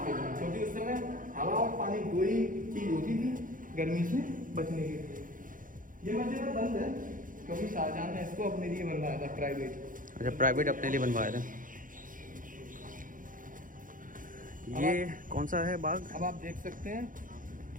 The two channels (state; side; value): late; left; 0.39 ms